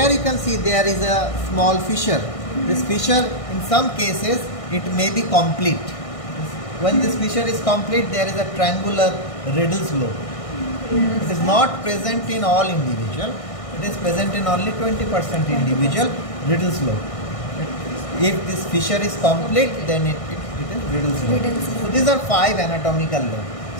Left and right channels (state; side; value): late; right; 1.6 ms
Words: you can see there is a small fissure. This fissure in some cases it may be complete. When this fissure is complete there is a triangular Riddle's lobe. It is not present in all individual. It is present in only 20% individual Riddle's lobe. If this fissure is complete then it is Riddle's lobe. So these are 5 anatomical lobes.